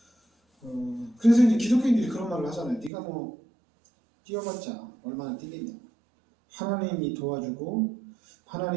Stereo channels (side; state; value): left; drops out; at 2.9 s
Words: 그래서 이제 기독교인들이 그런 말을 하잖아요. 네가 뛰어봤자 얼마나 뛰겠냐. 하나님이 도와주고